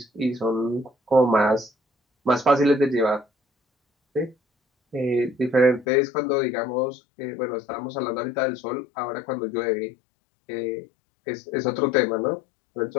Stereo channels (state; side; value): drops out; right; at 5.9 s